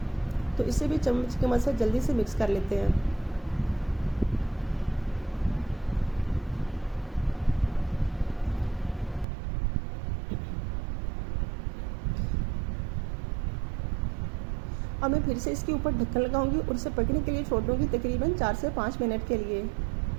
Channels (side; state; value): left; drops out; at 9.2 s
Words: तो इसे भी चम्मच की मदद से जल्दी से मिक्स कर लेते हैं। और मैं फिर से इसके ऊपर ढक्कन लगाऊंगी और इसे पकने के लिए छोड़ दूंगी तकरीबन 4 से 5 मिनट के लिए।